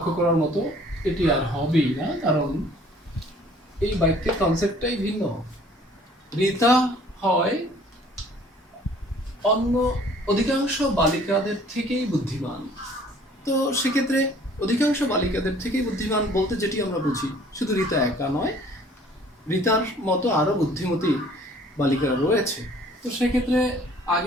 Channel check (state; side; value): normal; both; correlation 0.55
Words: করার মতো, এটি আর হবেই না, কারণ এই বাক্যের কনসেপ্টটাই ভিন্ন। রীতা হয় অন্য অধিকাংশ বালিকাদের থেকেই বুদ্ধিমান। তো সেক্ষেত্রে অধিকাংশ বালিকাদের থেকেই বুদ্ধিমান বলতে যেটি আমরা বুঝি, শুধু রীতা একা নয়, রীতার মতো আরো বুদ্ধিমতী বালিকারা রয়েছে। তো সেক্ষেত্রে